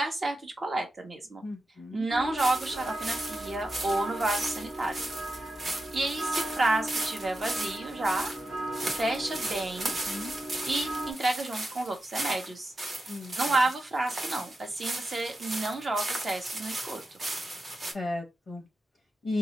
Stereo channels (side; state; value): both; normal; correlation 0.89